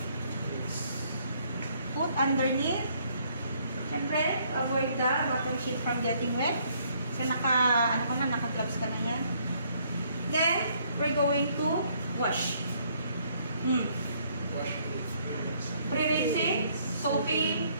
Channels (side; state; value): both; inverted; correlation -0.66